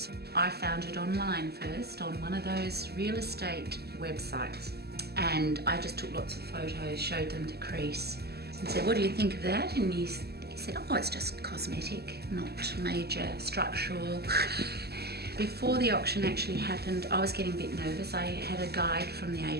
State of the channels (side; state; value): left; late; 0.46 ms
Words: I found it online first on one of those real estate websites, and I just took lots of photos, showed them to Chris and said, what do you think of that? And he said, oh, it's just cosmetic, not major structural. Before the auction actually happened, I was getting a bit nervous. I had a guide from the